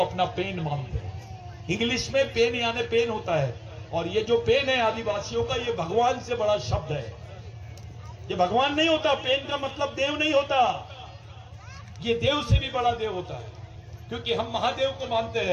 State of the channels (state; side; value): identical; both; correlation 1.00